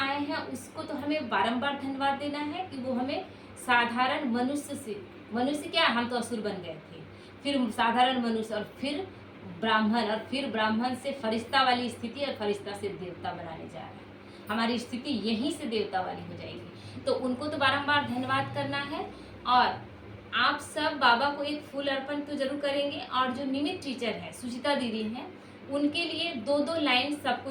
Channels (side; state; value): both; identical; correlation 1.00